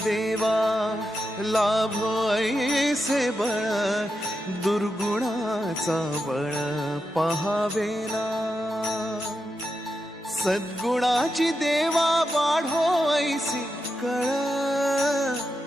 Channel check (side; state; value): both; normal; correlation 0.87